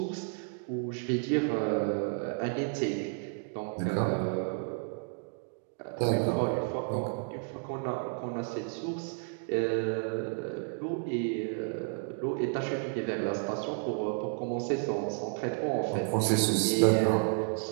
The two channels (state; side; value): silent; left; 57 dB below the other